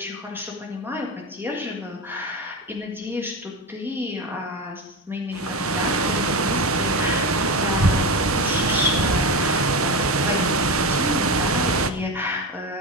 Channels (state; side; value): normal; both; correlation 0.20